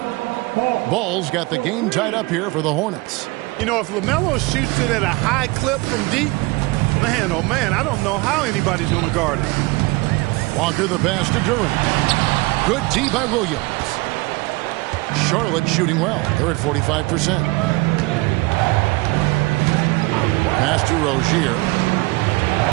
Ball's got the game tied up here for the Hornets. You know, if LaMelo shoots it at a high clip from deep, man, oh man, I don't know how anybody's going to guard it. Walker the pass to Duran. Good D by Williams. Charlotte shooting well. They're at 45%. Pass to Rozier.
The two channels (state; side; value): quieter; left; 23.5 dB